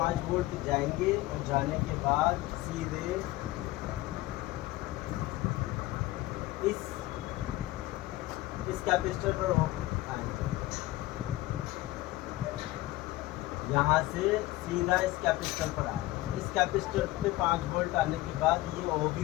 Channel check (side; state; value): right; quieter; 18.0 dB